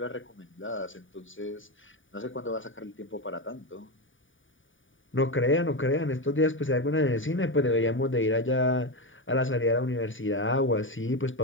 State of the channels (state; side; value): late; right; 0.57 ms